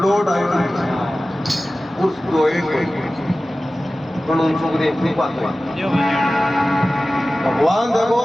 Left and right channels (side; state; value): both; normal; correlation 0.96